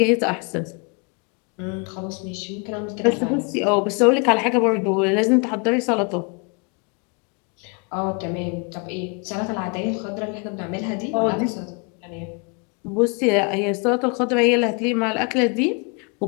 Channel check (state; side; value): quieter; right; 33.3 dB